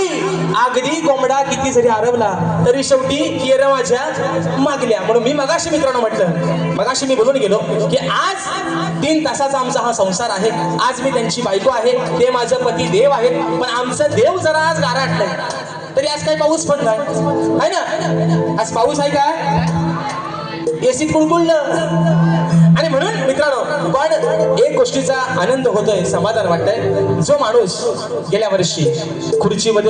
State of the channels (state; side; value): identical; both; correlation 1.00